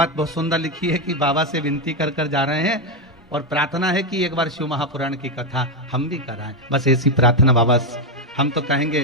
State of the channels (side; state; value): both; normal; correlation 0.05